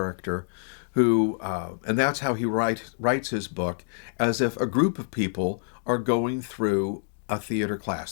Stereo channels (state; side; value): silent; right; digital silence